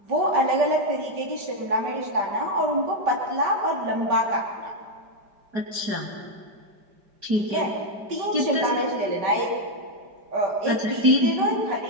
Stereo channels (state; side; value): late; left; 5.0 ms